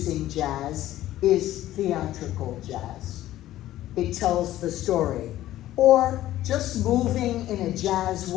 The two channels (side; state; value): right; quieter; 14.2 dB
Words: jazz is theatrical jazz. It tells the story. Or just moving in a jazz